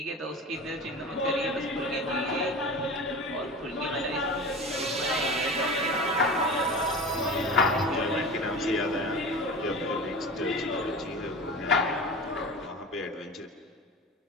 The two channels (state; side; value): normal; both; correlation 0.32